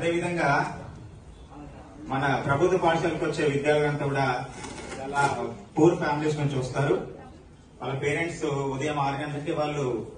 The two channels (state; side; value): identical; both; correlation 1.00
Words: మన ప్రభుత్వ పాఠశాలకు వచ్చే విద్యార్థులంతా కూడా చాలా పూర్ ఫ్యామిలీస్ నుంచి వస్తారు. వాళ్ళ పేరెంట్స్ ఉదయం 6 గంటలకి వాళ్ళు